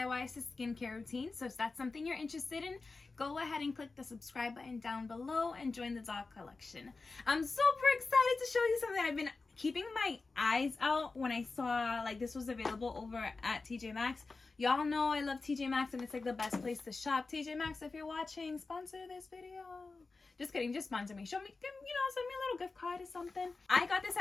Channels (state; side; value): quieter; right; 3.9 dB